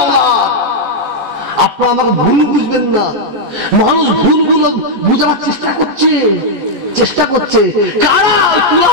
আপনারা আমাকে ভুল বুঝবেন না। মানুষ ভুলগুলো বুঝাবার চেষ্টা করছে কারা? ওই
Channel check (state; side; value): late; left; 15 ms